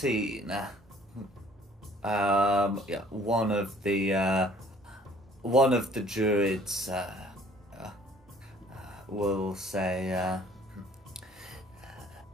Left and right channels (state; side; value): normal; both; correlation 0.55